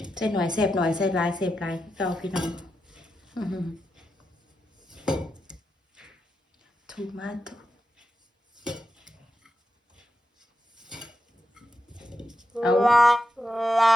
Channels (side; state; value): both; normal; correlation 0.87